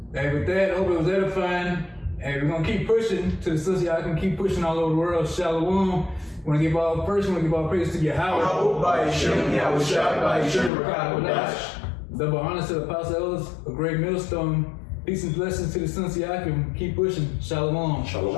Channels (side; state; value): right; drops out; at 10.7 s